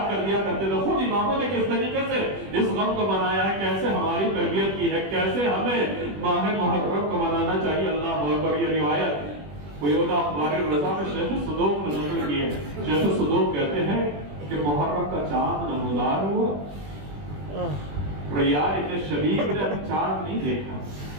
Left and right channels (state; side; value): late; left; 21 ms